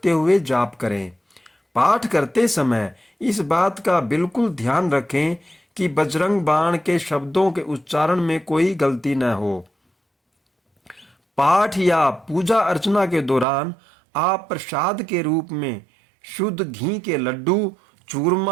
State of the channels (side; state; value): left; drops out; at 13.5 s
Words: हुए जाप करें। पाठ करते समय इस बात का बिल्कुल ध्यान रखें कि बजरंग बाण के शब्दों के उच्चारण में कोई गलती न हो। पाठ या पूजा अर्चना के दौरान आप प्रसाद के रूप में शुद्ध घी के लड्डू,